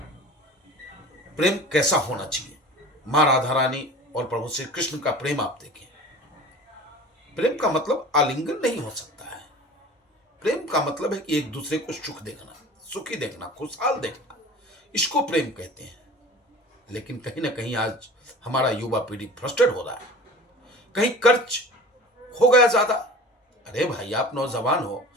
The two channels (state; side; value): normal; both; correlation 0.40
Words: प्रेम कैसा होना चाहिए। मां राधा रानी और प्रभु श्री कृष्ण का प्रेम आप देखें। प्रेम का मतलब आलिंगन नहीं हो सकता है। प्रेम का मतलब है कि एक दूसरे को सुख देखना, सुखी देखना, खुशहाल देखना, इसको प्रेम कहते हैं। लेकिन कहीं ना कहीं आज हमारा युवा पीढ़ी फ्रस्ट्रेट हो रहा है। कहीं कर्ज हो गया ज्यादा। अरे भाई, आप नौजवान हो,